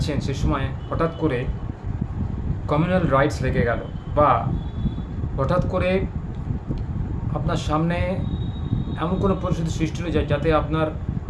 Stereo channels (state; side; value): identical; both; correlation 1.00